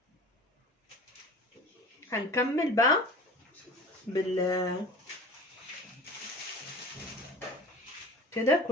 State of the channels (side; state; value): both; normal; correlation 0.39